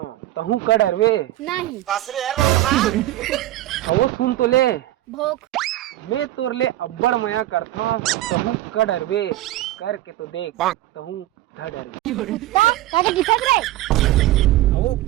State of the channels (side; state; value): left; quieter; 15.1 dB